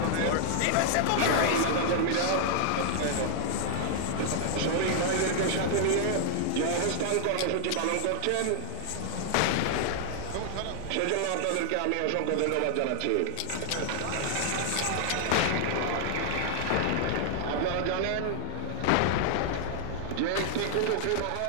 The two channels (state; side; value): different; both; correlation -0.01